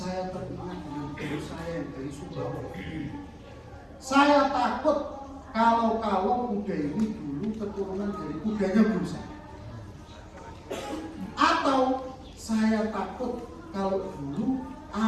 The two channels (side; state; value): both; identical; correlation 1.00